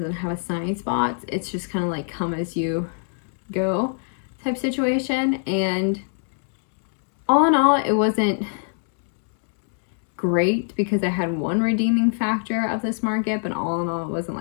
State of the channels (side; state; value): right; silent; digital silence